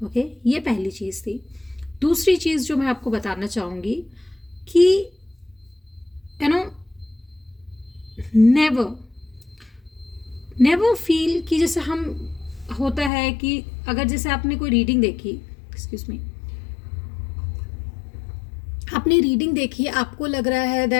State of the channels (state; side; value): drops out; right; at 13.1 s